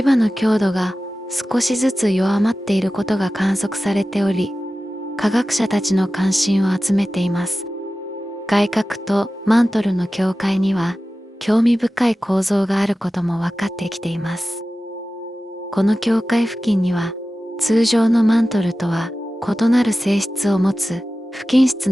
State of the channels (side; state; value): both; normal; correlation 0.95